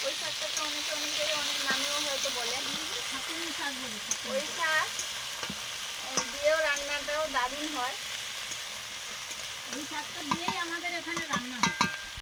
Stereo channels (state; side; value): identical; both; correlation 1.00